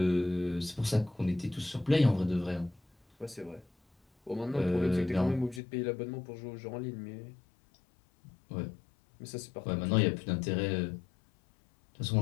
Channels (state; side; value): drops out; right; at 5.6 s